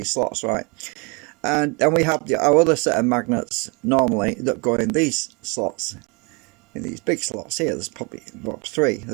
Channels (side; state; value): left; quieter; 31.0 dB